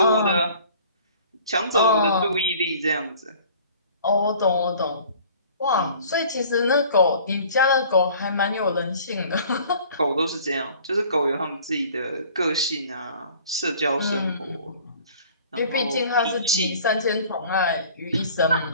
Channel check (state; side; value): inverted; both; correlation -0.50